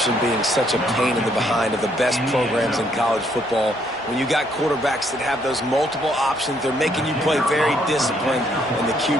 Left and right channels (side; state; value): both; normal; correlation 0.70